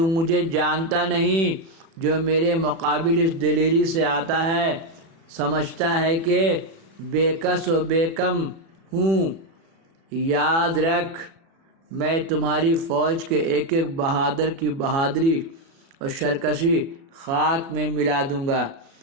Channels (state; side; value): late; left; 36 ms